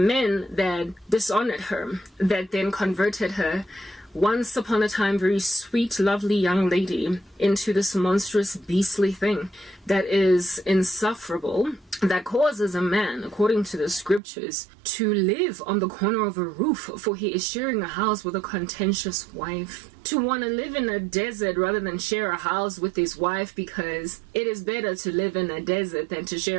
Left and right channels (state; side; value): drops out; left; at 14.2 s